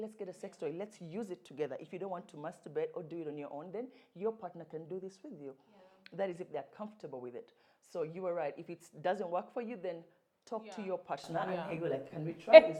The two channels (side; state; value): both; identical; correlation 1.00